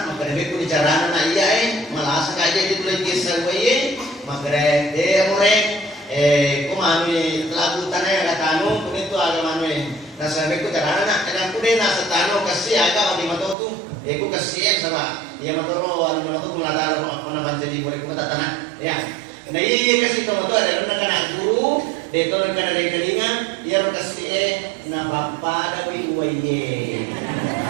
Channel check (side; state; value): left; drops out; at 13.6 s